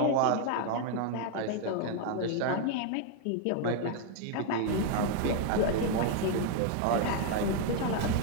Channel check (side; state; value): both; different; correlation 0.00